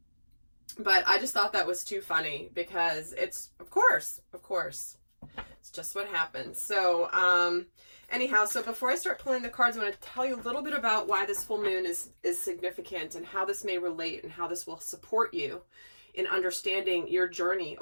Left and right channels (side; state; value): both; inverted; correlation -1.00